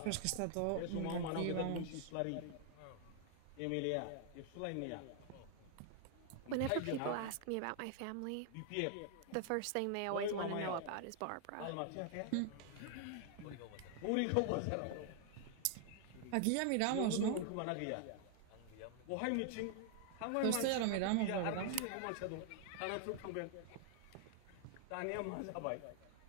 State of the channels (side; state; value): both; different; correlation 0.00